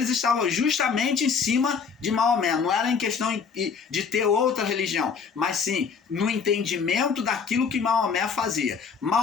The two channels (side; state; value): right; quieter; 5.9 dB